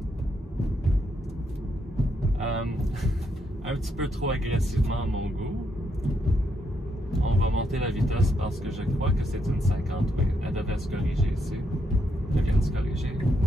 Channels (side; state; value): both; normal; correlation 0.78